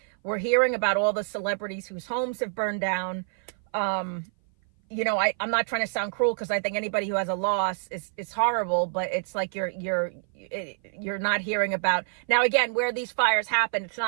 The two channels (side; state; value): left; silent; 57 dB below the other